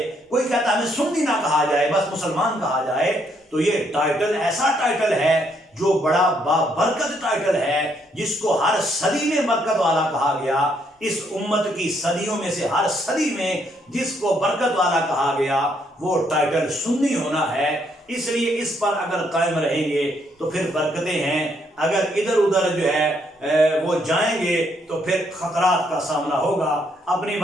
کوئی کہتا ہمیں سنی نہ کہا جائے، بس مسلمان کہا جائے، تو یہ ٹائٹل ایسا ٹائٹل ہے جو بڑا بابرکت ٹائٹل ہے، جس کو ہر صدی میں برکت والا کہا گیا۔ اس امت کی صدیوں میں سے ہر صدی میں جس کو برکت والا کہا گیا وہ ٹائٹل سنی ہونا ہے۔ اس لیے اس پر اگر قائم رہیں گے تو پھر برکتیں ہیں، اگر ادھر ادھر جو ہے وہ جائیں گے تو پھر خطرات کا سامنا ہوگا۔ اپنی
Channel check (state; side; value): normal; both; correlation 0.72